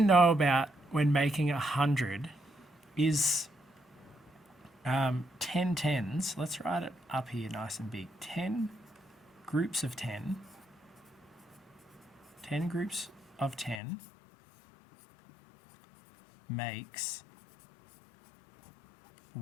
know about when making 100 is 10 tens. Let's write it up here nice and big. 10 groups of 10. 10 groups of 10 makes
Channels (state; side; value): drops out; right; at 13.8 s